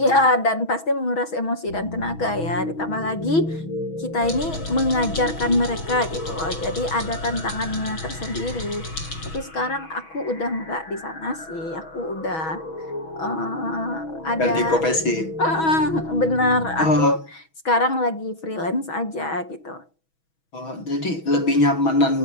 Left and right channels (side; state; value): right; late; 6.2 ms